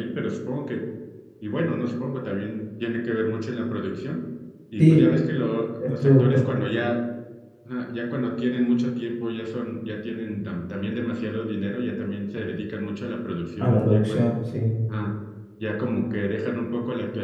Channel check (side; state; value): both; identical; correlation 1.00